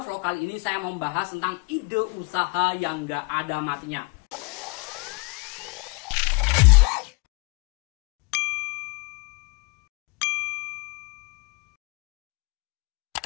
vlog kali ini saya mau membahas tentang ide usaha yang nggak ada matinya.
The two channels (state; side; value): quieter; right; 28.8 dB